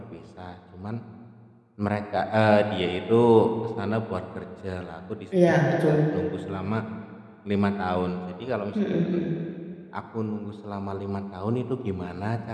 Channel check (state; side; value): identical; both; correlation 1.00